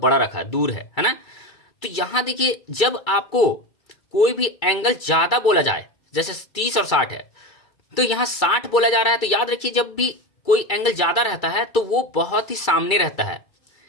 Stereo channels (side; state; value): right; late; 2.3 ms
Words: रखा है, दूर है ना। तो यहां देखिए जब आपको कोई भी एंगल ज्यादा बोला जाए, जैसे 30 और 60 है, तो यहां 60 बोला जा रहा है, तो याद रखिए जब भी कोई एंगल ज्यादा रहता है तो वो बहुत ही सामने रहता है,